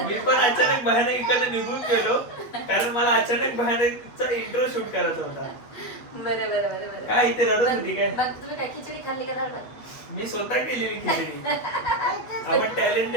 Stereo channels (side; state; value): right; late; 8.5 ms